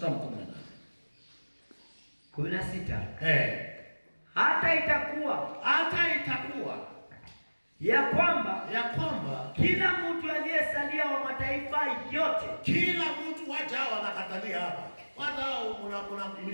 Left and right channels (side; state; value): both; inverted; correlation -1.00